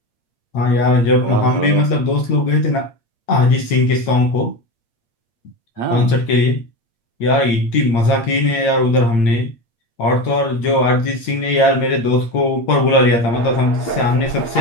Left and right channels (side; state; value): right; late; 8.8 ms